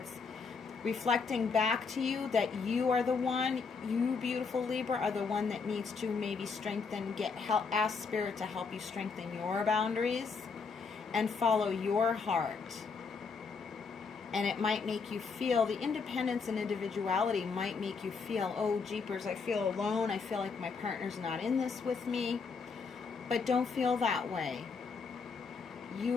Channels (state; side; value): quieter; right; 5.1 dB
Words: reflecting back to you that you are the one, you beautiful Libra, are the one that needs to maybe strengthen, ask Spirit to help you strengthen your boundaries and follow your heart. And it might make you feel, the independence and individuality might make you feel, oh jeepers, I feel alone, I feel like my partner's not in this with me. But don't feel that way.